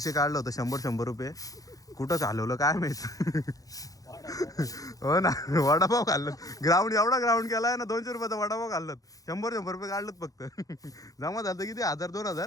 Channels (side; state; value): right; late; 0.17 ms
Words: काढलं होतं 100 रुपये कुठंच हलवलं काय माहित हो ना वडापाव खाल्लं ग्राउंड एवढा ग्राउंड केला आहे ना 200 रुपयाचा वडापाव खाल्लं 100 रुपये काढलं फक्त जमा झालं किती 1000-2000